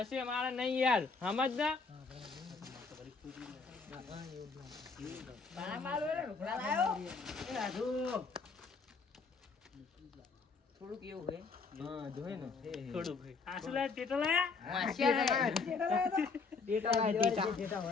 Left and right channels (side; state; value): right; quieter; 4.7 dB